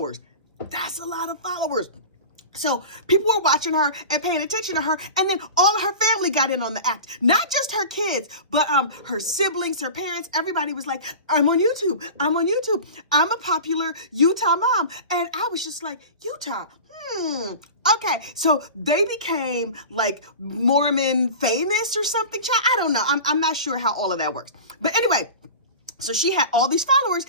That's a lot of followers. So people were watching her and paying attention to her, and then all of her family got in on the act. Not just her kids, but her siblings, her parents, everybody was like, I'm on YouTube. I'm a popular Utah mom. And I was just like, Utah, okay. So they became like Mormon famous or something. I don't know. I'm not sure how all of that works. But anyway, so she had all these followers,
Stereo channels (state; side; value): inverted; both; correlation -0.33